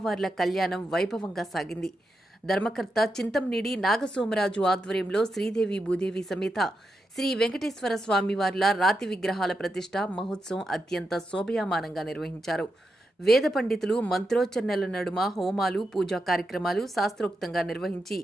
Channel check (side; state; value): both; normal; correlation 0.87